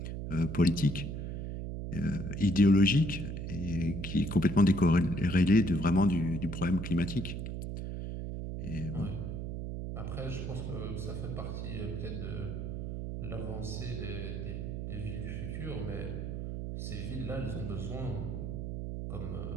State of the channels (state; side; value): noise; right; hum, 5 dB below the sound